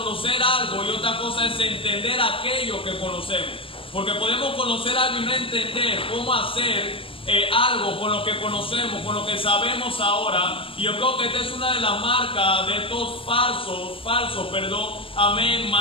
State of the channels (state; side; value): late; right; 0.26 ms